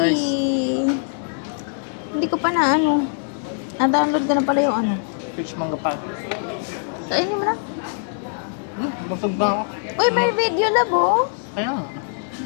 Hindi ko pa na ano. Na-download ko na pala yung ano. Peach mango pie. Kainin mo na. Busog na ako. Uy, may video labo. Kaya nga.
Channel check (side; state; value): right; silent; digital silence